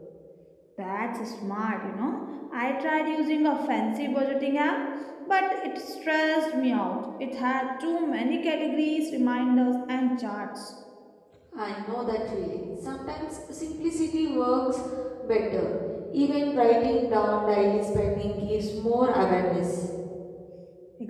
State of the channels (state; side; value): identical; both; correlation 1.00